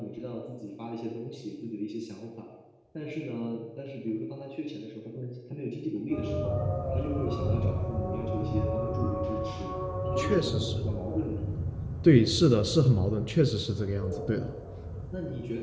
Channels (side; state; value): both; identical; correlation 1.00